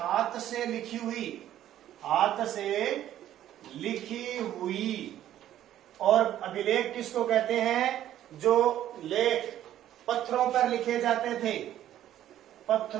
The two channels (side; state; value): left; quieter; 12.1 dB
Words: से लिखी हुई, हाथ से लिखी हुई, और अभिलेख किसको कहते हैं, जो लेख पत्थरों पर लिखे जाते थे।